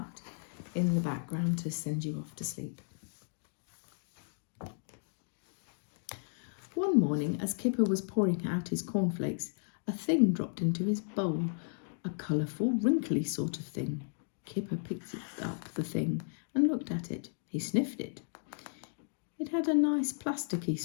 in the background to send you off to sleep. One morning, as Kipper was pouring out his cornflakes, a thing dropped into his bowl, a colourful, wrinkly sort of thing. Kipper picked up the thing and looked at it. He sniffed it. It had a nice plasticky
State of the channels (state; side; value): silent; right; digital silence